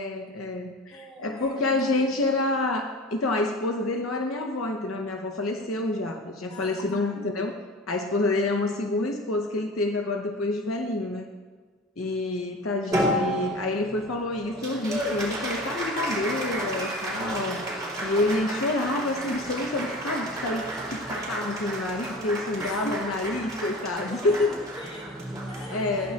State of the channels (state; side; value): normal; both; correlation 0.35